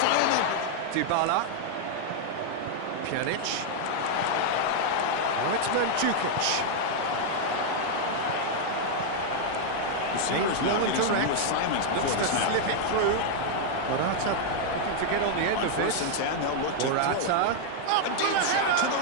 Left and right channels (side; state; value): both; different; correlation 0.00